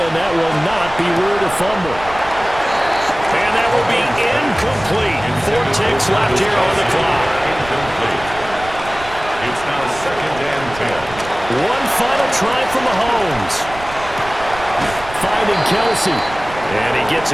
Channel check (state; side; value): noise; right; rumble, 15 dB below the sound